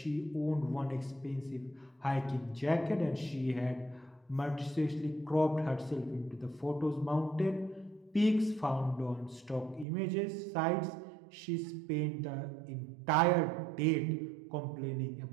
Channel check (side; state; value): left; drops out; at 9.9 s